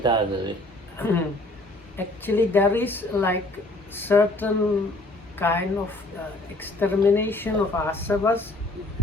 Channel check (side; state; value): both; normal; correlation 0.57